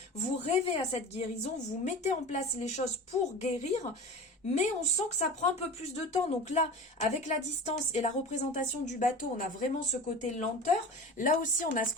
vous rêvez à cette guérison, vous mettez en place les choses pour guérir, mais on sent que ça prend un peu plus de temps. Donc là, avec la distance et la représentation du bateau, on a vraiment ce côté lenteur. Là aussi, on a ce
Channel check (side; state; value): both; normal; correlation 0.33